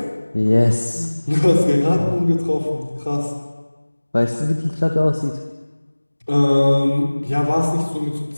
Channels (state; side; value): inverted; both; correlation -1.00